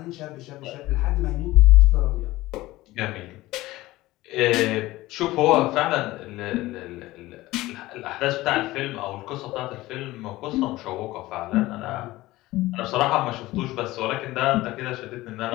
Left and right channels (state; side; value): quieter; right; 18.1 dB